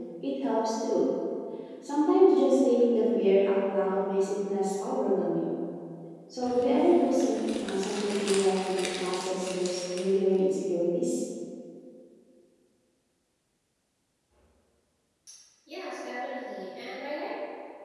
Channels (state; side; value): identical; both; correlation 1.00